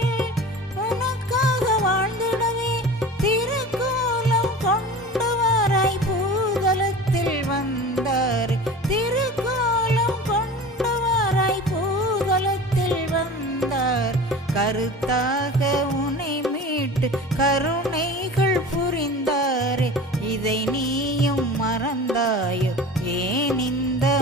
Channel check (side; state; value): both; normal; correlation 0.36